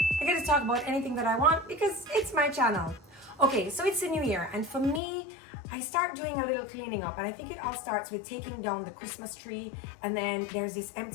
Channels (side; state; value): right; drops out; at 5.0 s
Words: I get to talk about anything that I want because it's my channel. Okay, so it's a new year, and for me, I start doing a little cleaning up, and I think it all starts with taking down the Christmas tree, and then there's this